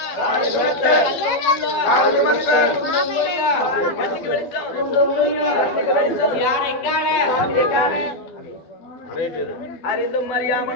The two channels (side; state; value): right; late; 12 ms